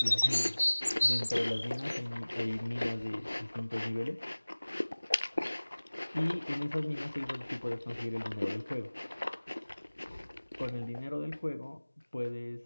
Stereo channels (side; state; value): both; inverted; correlation -1.00